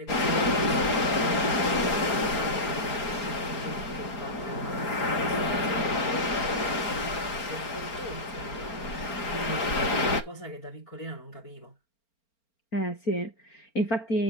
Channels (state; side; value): late; right; 4.4 ms